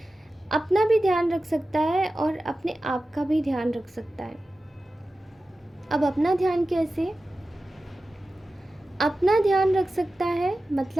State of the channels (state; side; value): normal; both; correlation 0.94